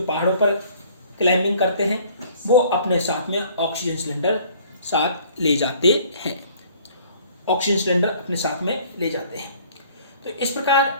पहाड़ों पर क्लाइंबिंग करते हैं वो अपने साथ में ऑक्सीजन सिलेंडर ले जाते हैं। तो इस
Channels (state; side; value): inverted; both; correlation -0.55